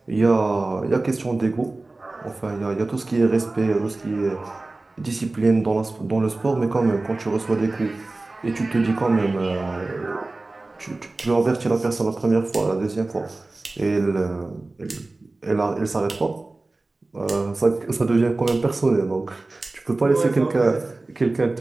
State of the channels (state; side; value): quieter; left; 3.1 dB